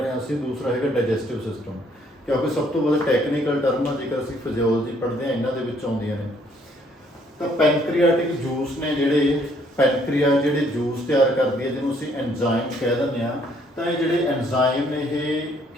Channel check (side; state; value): both; normal; correlation 0.65